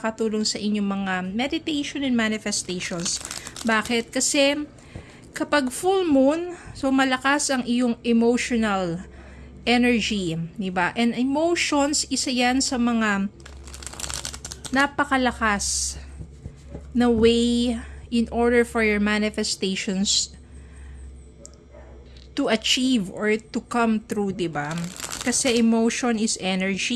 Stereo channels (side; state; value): both; identical; correlation 1.00